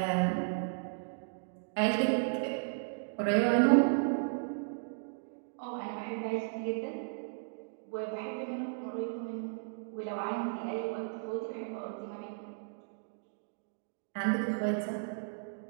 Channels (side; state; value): left; silent; digital silence